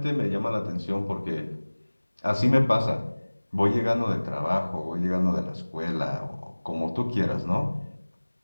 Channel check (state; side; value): inverted; both; correlation -1.00